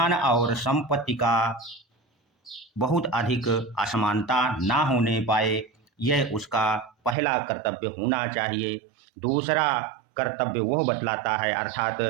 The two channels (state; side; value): drops out; left; at 7.2 s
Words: और संपत्ति का बहुत अधिक असमानता ना होने पाए। यह उसका पहला कर्तव्य होना चाहिए। दूसरा कर्तव्य वह बतलाता है, अर्थात